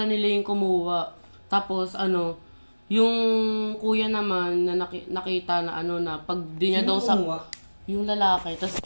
nila yung kumuha. Tapos ano, yung kuya naman na nakita na ano na pag di niya Sino daw sa kumuha? yung lalaki. Tapos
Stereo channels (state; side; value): inverted; both; correlation -1.00